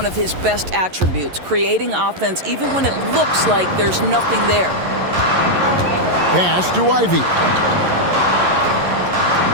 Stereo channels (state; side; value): late; left; 11 ms